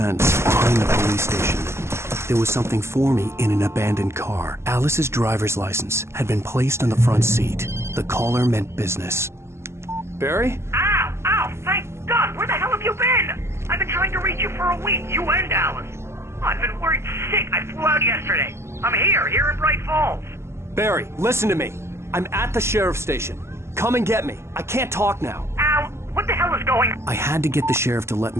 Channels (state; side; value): late; left; 0.13 ms